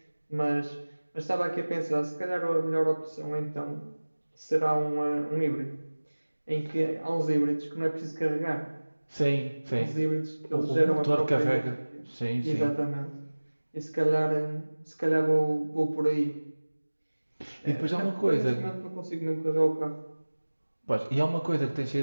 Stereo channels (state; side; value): inverted; both; correlation -1.00